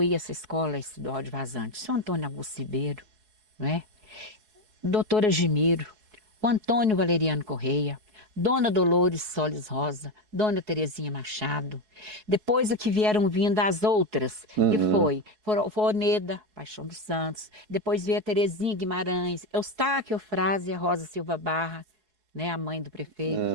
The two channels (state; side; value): late; left; 4.7 ms